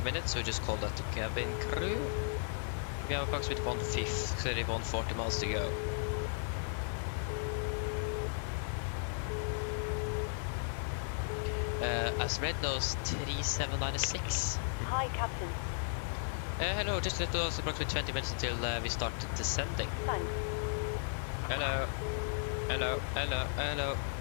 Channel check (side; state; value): right; silent; 54 dB below the other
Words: minutes, so we just call that to cabin crew. We have approximately 140 miles to go. As Red knows, 3796. Hi, Captain. Hello, just let us approximately 20 minutes until we start descending. Thanks. Hello. Hello, hello, hello.